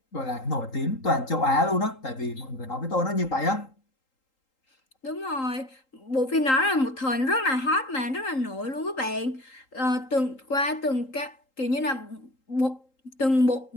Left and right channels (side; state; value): right; late; 3.8 ms